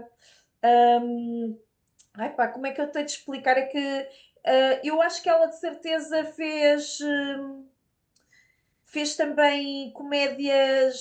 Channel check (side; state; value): both; identical; correlation 1.00